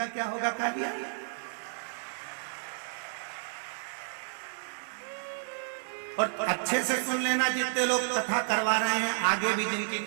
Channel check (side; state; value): left; silent; digital silence